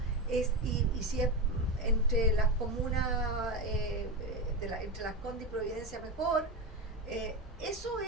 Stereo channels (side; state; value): both; normal; correlation 0.17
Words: y si es entre las comunas, entre Las Condes y Providencia mejor, eso